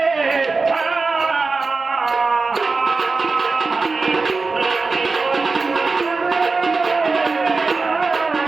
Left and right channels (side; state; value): left; quieter; 4.0 dB